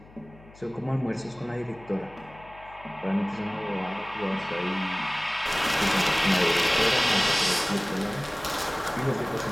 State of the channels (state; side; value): noise; left; hum, 23 dB below the sound